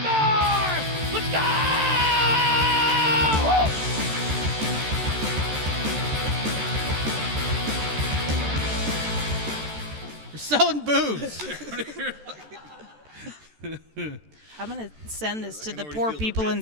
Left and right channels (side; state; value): left; late; 13 ms